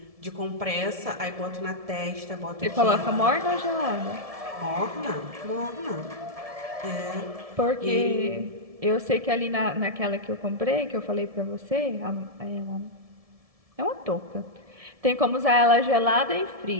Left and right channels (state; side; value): late; left; 1.7 ms